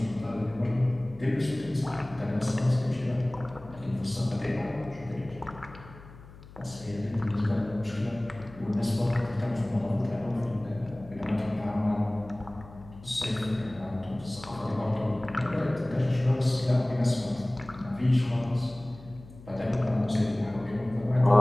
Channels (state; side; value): noise; left; hum, 19 dB below the sound